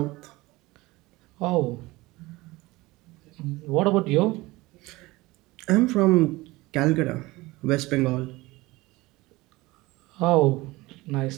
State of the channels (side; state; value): left; quieter; 20.8 dB